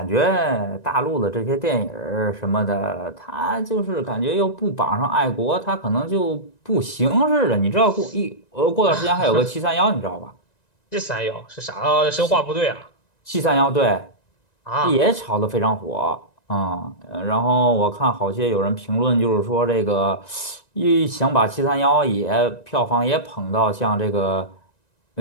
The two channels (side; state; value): right; late; 1.9 ms